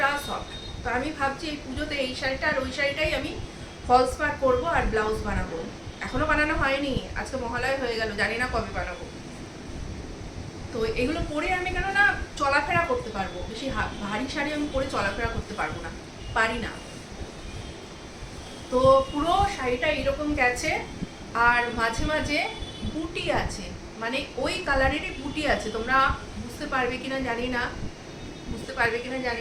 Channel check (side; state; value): both; identical; correlation 1.00